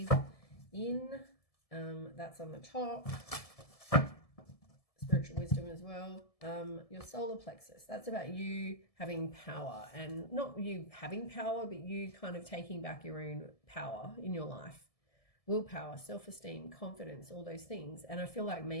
in. That's on the top. Spiritual wisdom as well. Your solar plexus, that's about you having power, and not you having power, but you kind of taking back your own power in your life. Willpower, self-esteem, confidence, all those things. And I feel like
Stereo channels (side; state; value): right; late; 1.7 ms